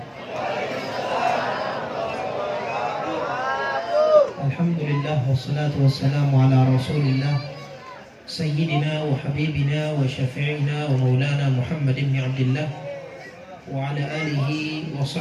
Alhamdulillah wassalatu wassalamu ala Rasulillah Sayyidina wa habibina wa syafi'ina wa maulana Muhammad ibn Abdullah wa ala alihi wa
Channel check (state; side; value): identical; both; correlation 1.00